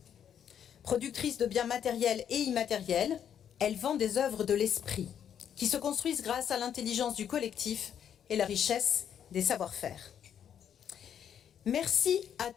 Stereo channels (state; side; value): quieter; right; 9.0 dB